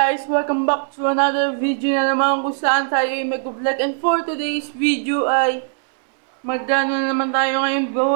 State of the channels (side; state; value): left; silent; 63 dB below the other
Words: welcome back to another video na naman kung saan tayo ay mag-vlog. And for today's video ay magdano na naman tayo ngayon,